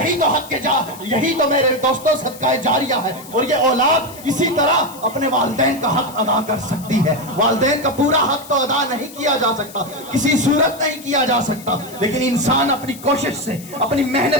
تو حق یہی تو میرے دوستوں صدقہ جاریہ ہے. اور یہ اولاد اسی طرح اپنے والدین کا حق ادا کر سکتی ہے. والدین کا پورا حق تو ادا نہیں کیا جا سکتا, کسی صورت نہیں کیا جا سکتا, لیکن انسان اپنی کوشش سے اپنی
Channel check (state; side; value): noise; left; hiss, 18 dB below the sound